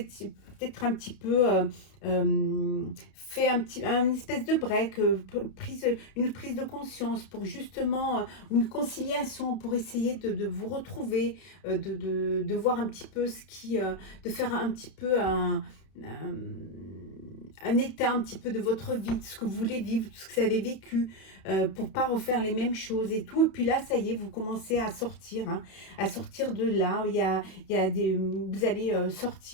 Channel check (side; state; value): right; late; 31 ms